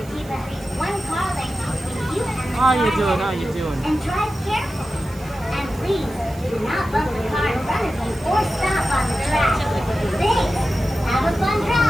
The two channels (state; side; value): noise; right; hiss, 22 dB below the sound